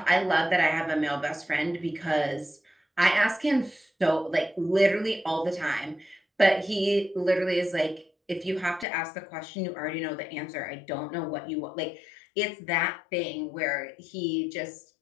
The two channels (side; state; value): right; drops out; at 8.8 s